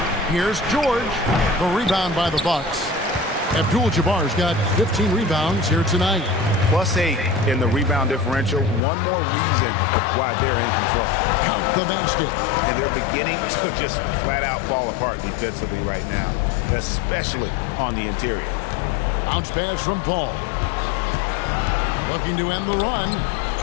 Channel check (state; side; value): drops out; right; at 8.8 s